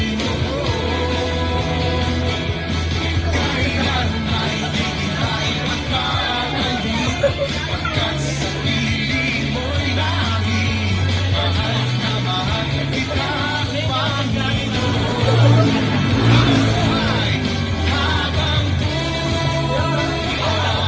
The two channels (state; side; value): identical; both; correlation 1.00